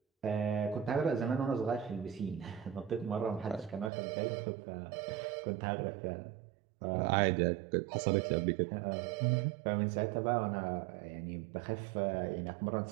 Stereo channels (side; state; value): left; drops out; at 3.9 s